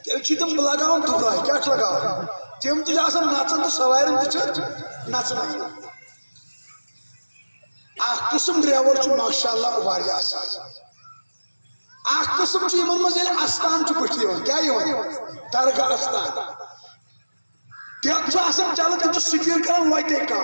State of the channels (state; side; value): inverted; both; correlation -1.00